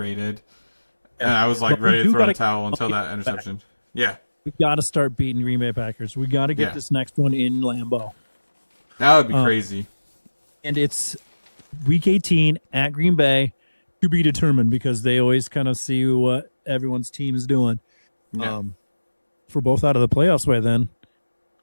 And I was like But we ready to do throw in the gotta towel until get that interception. Yeah, We got to start beating Green Bay Packers. We got to get Yeah. this next one in Lambeau. that would be crazy. And it's week 18 at Green Bay to be determined because they always kind of see what everyone's team is doing. Yeah. If we're both out of the playoffs by then.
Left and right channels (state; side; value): inverted; both; correlation -1.00